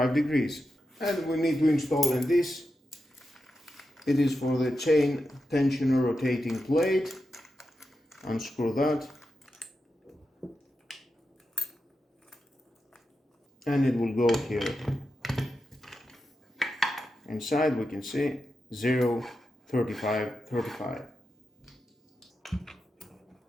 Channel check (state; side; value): normal; both; correlation 0.89